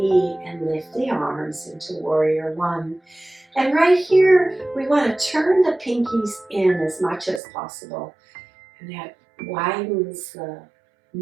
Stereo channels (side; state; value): left; drops out; at 7.4 s